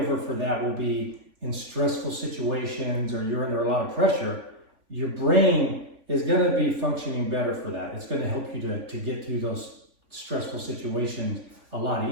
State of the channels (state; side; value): late; left; 3.5 ms